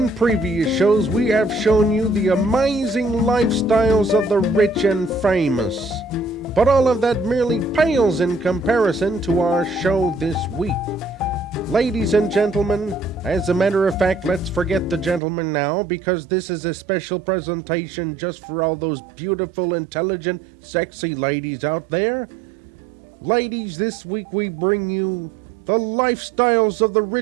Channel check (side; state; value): left; drops out; at 15.2 s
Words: previous shows, we have shown you the amazing lifestyles of the rich and famous. But all of that merely pales in comparison to our show this week. Ladies and gentlemen, as a matter of fact, let's forget the gentlemen now, because this is a special presentation just for all those beautiful, intelligent, sexy ladies out there. Ladies, this week we bring you the lifestyles of the